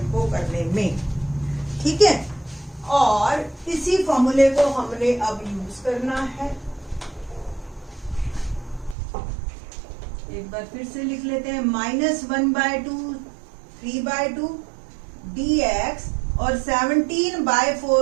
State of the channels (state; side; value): drops out; left; at 9.0 s